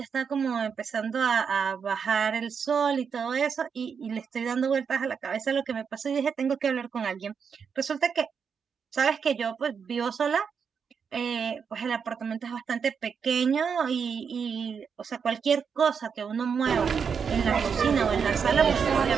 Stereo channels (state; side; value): quieter; left; 6.5 dB